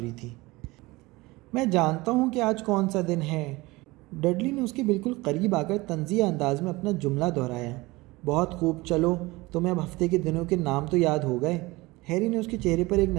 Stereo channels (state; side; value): quieter; left; 21.6 dB